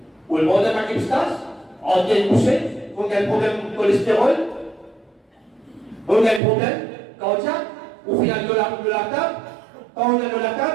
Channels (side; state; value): left; drops out; at 6.4 s